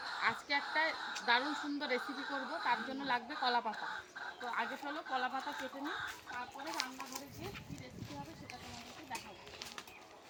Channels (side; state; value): both; identical; correlation 1.00